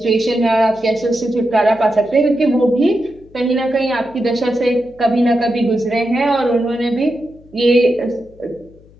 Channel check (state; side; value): noise; left; hum, 26 dB below the sound